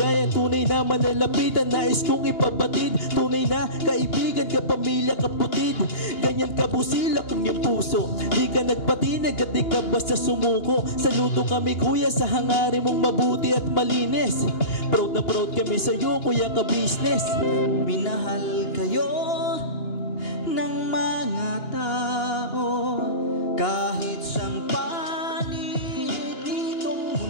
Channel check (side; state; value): right; late; 2.8 ms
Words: Tunay na manalapitan, nais kong ipabatid. Tunay na kaibigan, kapamilya, kaputid. Ganyan kabusilak ang iyong puso. Di ka nagpatid at di ka basta sumuko. Saludo kami kuya sa hangarin mong mabuti at malinis. Proud na proud kami sa'yo kuya ka business. Minahal kayo ng mga tao kahit sang panig nitong